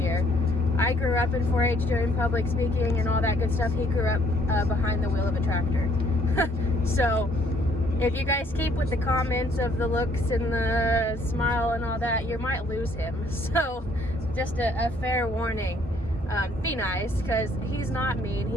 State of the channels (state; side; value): normal; both; correlation 0.64